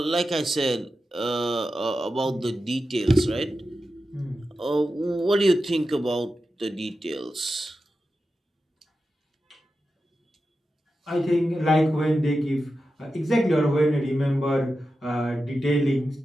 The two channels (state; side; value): normal; both; correlation 0.91